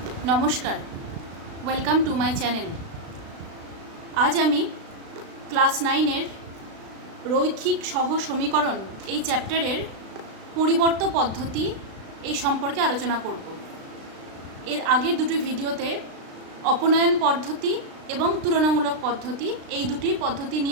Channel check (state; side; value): late; left; 36 ms